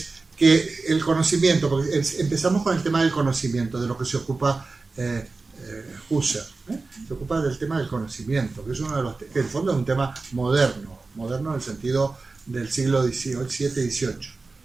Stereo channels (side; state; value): left; quieter; 3.8 dB